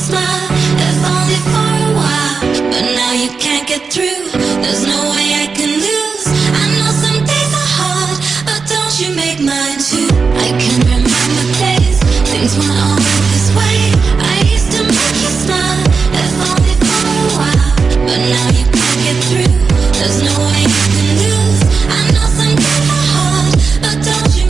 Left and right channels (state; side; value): quieter; left; 5.0 dB